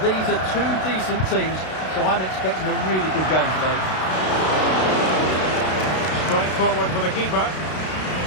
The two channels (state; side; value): late; right; 32 ms